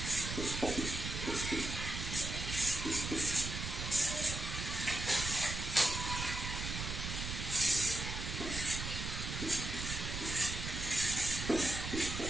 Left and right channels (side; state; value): right; noise; rumble, 4 dB below the sound